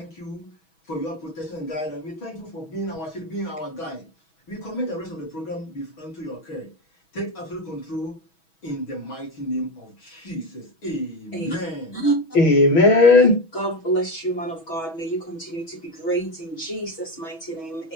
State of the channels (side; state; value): right; late; 6.2 ms